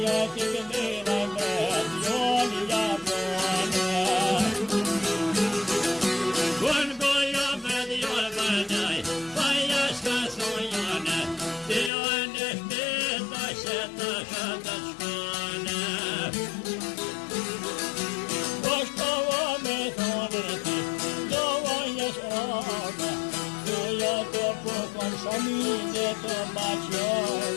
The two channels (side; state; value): right; drops out; at 11.9 s